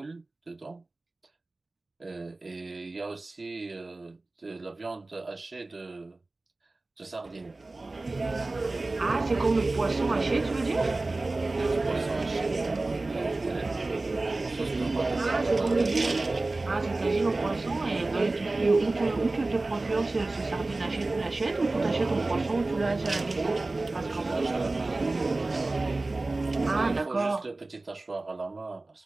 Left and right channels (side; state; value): left; quieter; 3.1 dB